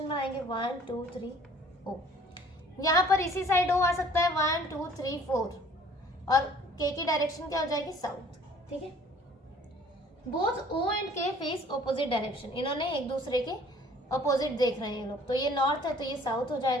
में आएंगे 1 2 3 ओ। यहाँ पर इसी साइड ओ आ सकता है 1 2 3 4 और के की डायरेक्शन क्या हो जाएगी साउथ। ठीक है, बोथ ओ एंड के फेस ऑपोजिट डायरेक्शन, इन्होंने एक दूसरे के ऑपोजिट देख रहे हैं ये लोग, तो ये नॉर्थ है तो ये साउथ हो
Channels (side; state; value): both; normal; correlation 0.54